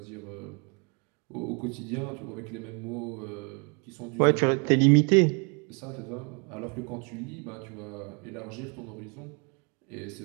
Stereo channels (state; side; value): quieter; left; 34.5 dB